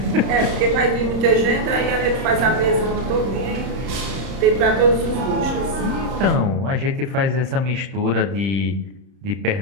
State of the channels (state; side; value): late; left; 30 ms